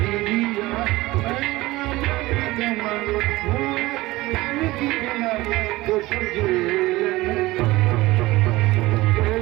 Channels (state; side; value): quieter; left; 19.3 dB